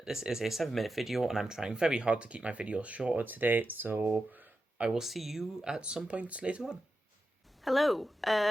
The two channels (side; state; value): both; normal; correlation 0.90